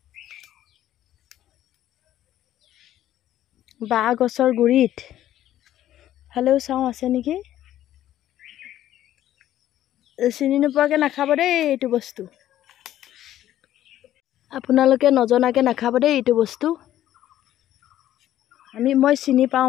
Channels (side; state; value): right; quieter; 12.6 dB